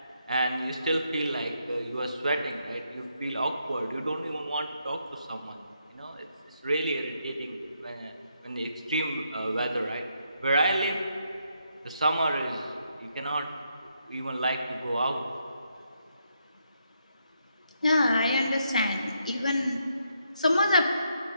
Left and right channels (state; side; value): inverted; both; correlation -0.78